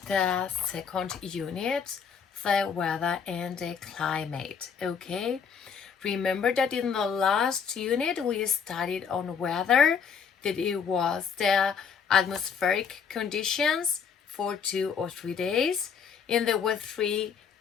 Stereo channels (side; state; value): right; quieter; 6.6 dB